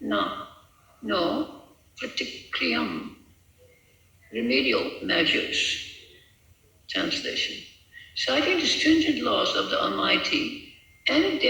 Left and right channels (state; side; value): identical; both; correlation 1.00